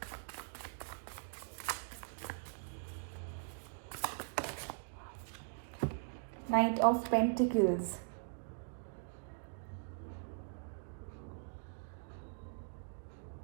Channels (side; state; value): left; silent; digital silence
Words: Knight of Pentacles.